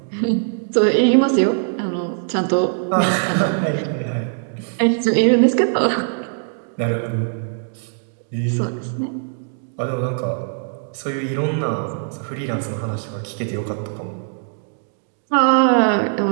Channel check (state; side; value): silent; left; digital silence